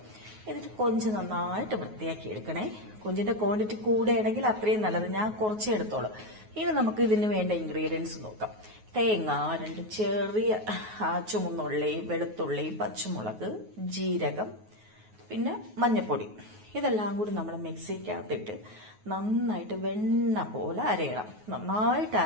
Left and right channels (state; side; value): late; left; 9.4 ms